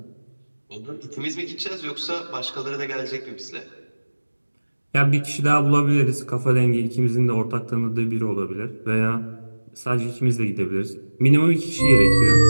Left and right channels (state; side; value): inverted; both; correlation -1.00